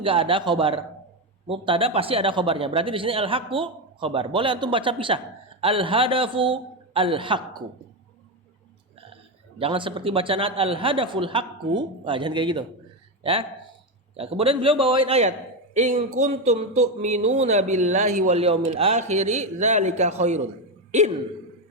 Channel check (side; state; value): both; normal; correlation 0.11